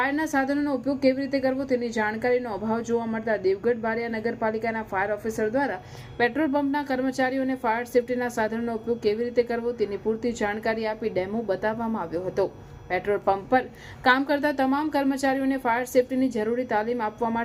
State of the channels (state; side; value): identical; both; correlation 1.00